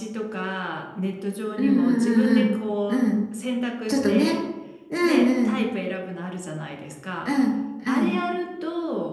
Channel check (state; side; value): identical; both; correlation 1.00